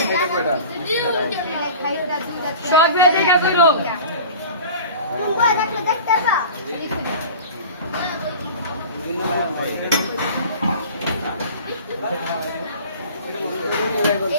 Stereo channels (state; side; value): inverted; both; correlation -0.39